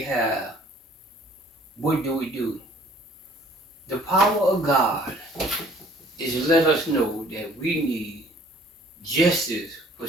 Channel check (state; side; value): normal; both; correlation 0.55